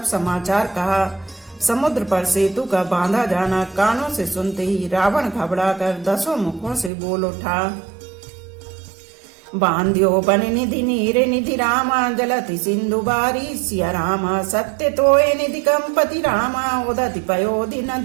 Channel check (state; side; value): drops out; left; at 6.9 s